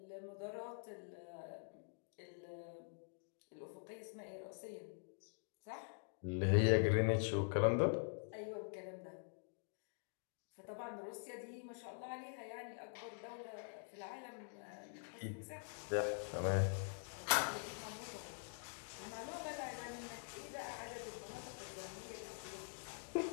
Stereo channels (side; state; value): right; silent; digital silence